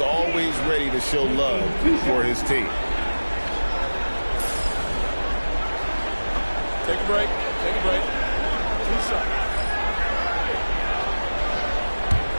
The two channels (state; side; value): inverted; both; correlation -1.00